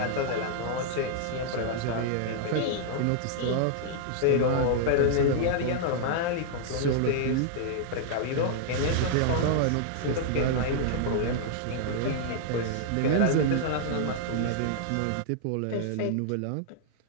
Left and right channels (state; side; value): different; both; correlation -0.01